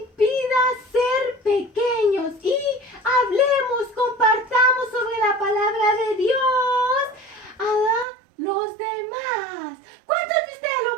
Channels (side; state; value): left; drops out; at 8.1 s